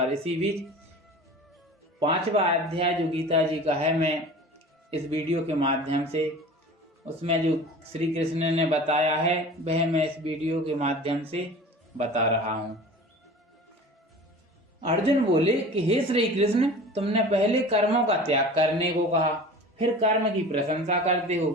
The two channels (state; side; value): normal; both; correlation 0.39